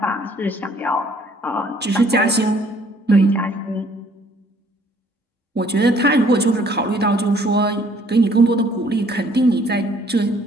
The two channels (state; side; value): normal; both; correlation 0.61